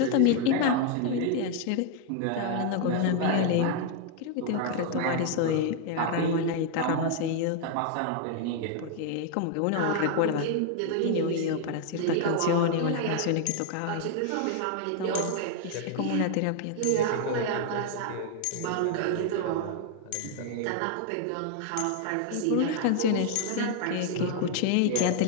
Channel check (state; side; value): different; both; correlation 0.00